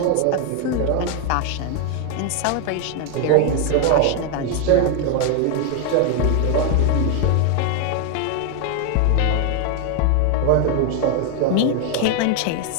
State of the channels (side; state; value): both; different; correlation 0.01